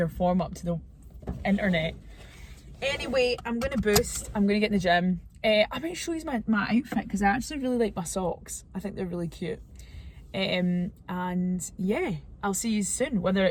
form up to the internet. Anyway, I'm going to boost. I'm going to get in the gym. I might show you my outfit, because I actually really like my socks. I think they're really cute. And yeah, I'll see you soon, whether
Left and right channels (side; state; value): both; identical; correlation 1.00